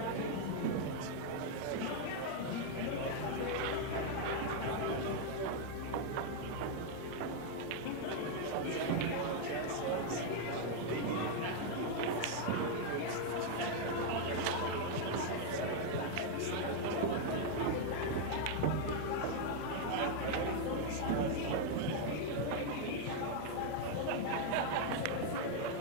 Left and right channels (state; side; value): different; both; correlation 0.00